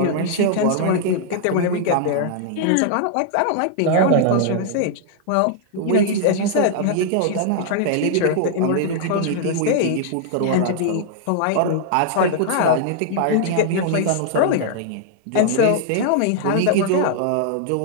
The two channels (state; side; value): different; both; correlation -0.01